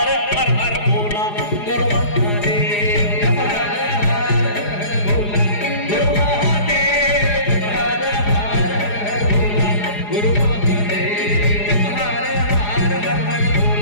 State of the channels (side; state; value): right; late; 4.8 ms